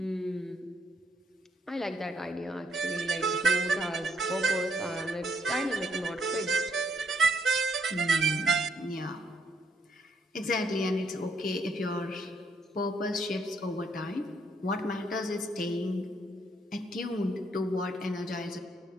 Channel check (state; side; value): normal; both; correlation 0.72